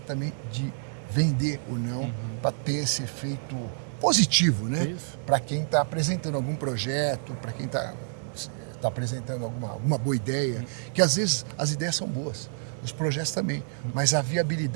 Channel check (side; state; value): left; silent; digital silence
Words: também de vender o não para ter esse efeito positivo, né? Para quem está apresentando algum projeto, para quem está apresentando alguma boa ideia, que às vezes as ideias são boas. Os projetos também, mas a